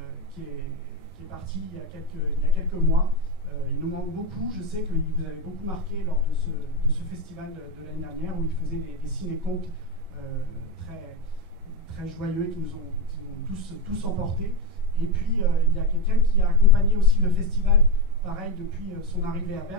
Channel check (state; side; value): late; left; 11 ms